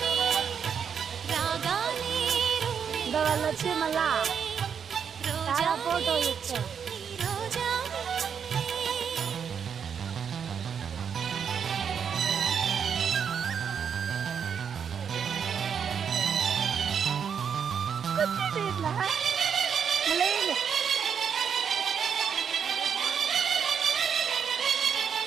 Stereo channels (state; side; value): quieter; left; 7.3 dB